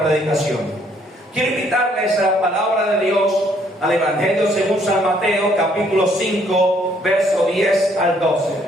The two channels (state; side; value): normal; both; correlation 0.66